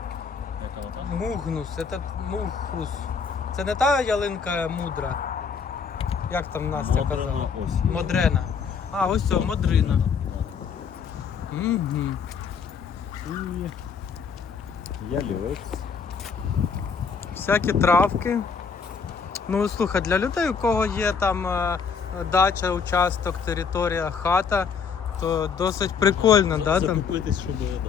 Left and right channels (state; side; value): quieter; right; 5.9 dB